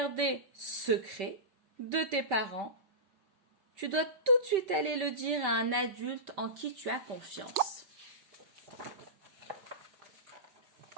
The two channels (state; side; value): late; left; 5.2 ms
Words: secret de tes parents, tu dois tout de suite aller le dire à un adulte en qui tu as confiance.